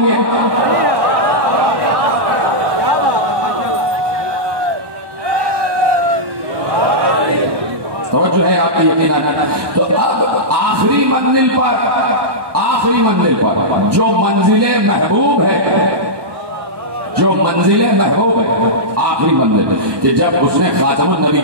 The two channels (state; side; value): late; left; 1.1 ms